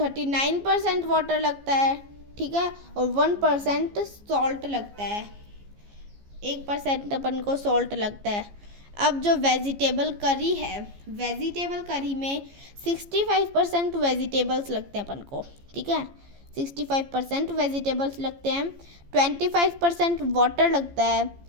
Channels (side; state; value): left; late; 15 ms